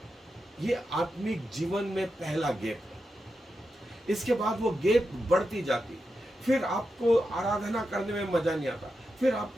ये आत्मिक जीवन में पहला गैप है। इसके बाद वो गैप बढ़ती जाती, फिर आपको आराधना करने में मजा नहीं आता, फिर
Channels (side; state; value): both; normal; correlation 0.88